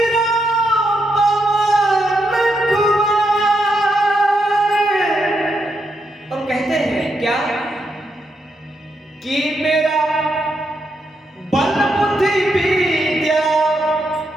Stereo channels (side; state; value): both; normal; correlation 0.81